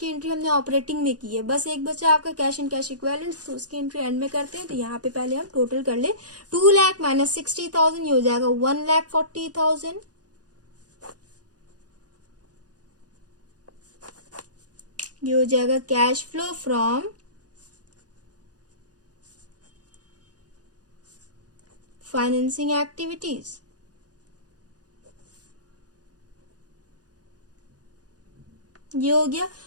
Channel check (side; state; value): left; late; 0.68 ms